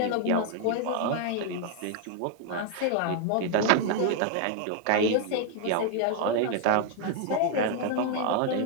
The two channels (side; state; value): both; different; correlation 0.00